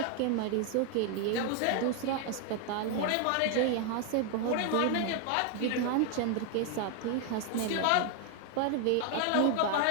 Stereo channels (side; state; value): both; different; correlation 0.00